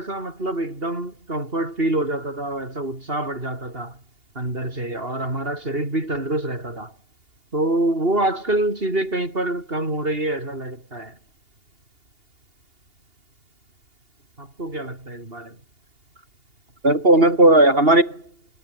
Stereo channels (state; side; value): late; left; 2.8 ms